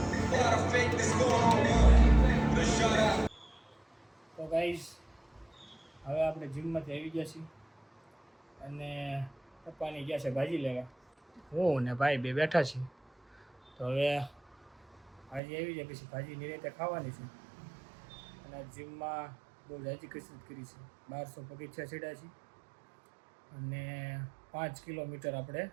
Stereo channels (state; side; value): drops out; left; at 15.4 s